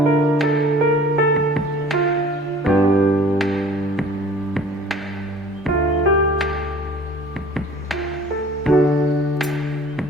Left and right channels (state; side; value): normal; both; correlation 0.48